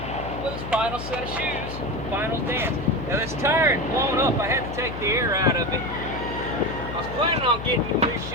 with his final set of shoes, final dance. Now this tire had blown up. I had to take the air out of it. I was planning on getting you these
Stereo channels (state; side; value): noise; left; hum, 9 dB below the sound